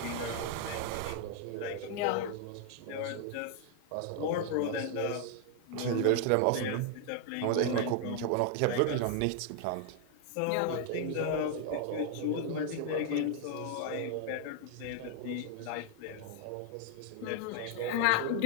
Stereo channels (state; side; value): different; both; correlation 0.00